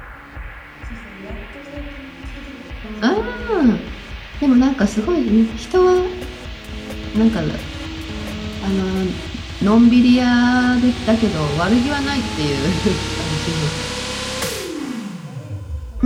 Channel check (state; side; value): identical; both; correlation 1.00